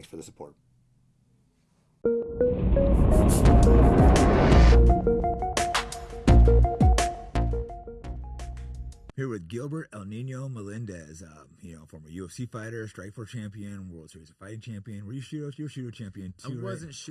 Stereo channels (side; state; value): both; identical; correlation 1.00